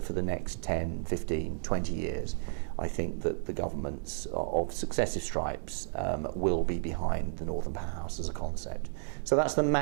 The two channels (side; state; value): left; silent; digital silence